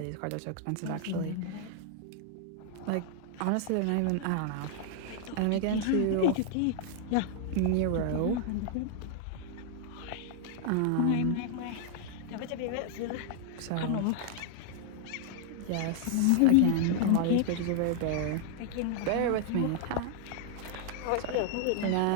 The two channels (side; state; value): both; different; correlation 0.00